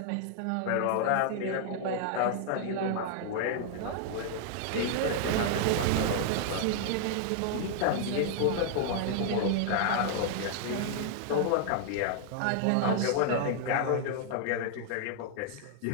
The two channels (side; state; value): both; different; correlation 0.00